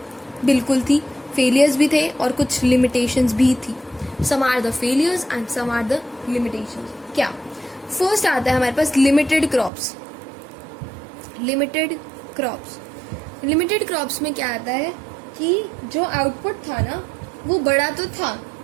बिल्कुल थी, फेलियर्स भी थे और कुछ लिमिटेशंस भी थी। Some are the failures and some are the limitations. क्या? फर्स्ट आता है हमारे पास लिमिटेड क्रॉप्स। लिमिटेड क्रॉप्स में क्या आता है कि जो आउटपुट था ना वो बड़ा तो था,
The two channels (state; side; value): drops out; left; at 9.7 s